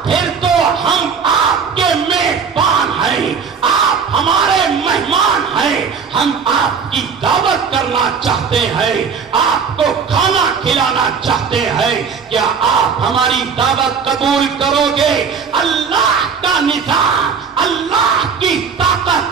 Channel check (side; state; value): left; quieter; 6.1 dB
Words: پھر تو ہم آپ کے میزبان ہیں، آپ ہمارے مہمان ہیں، ہم آپ کی دعوت کرنا چاہتے ہیں، آپ کو کھانا کھلانا چاہتے ہیں، کیا آپ ہماری دعوت قبول کرو گے؟ اللہ کا نظام، اللہ کی